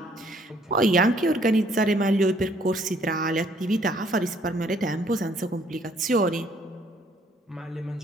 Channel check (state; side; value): normal; both; correlation 0.64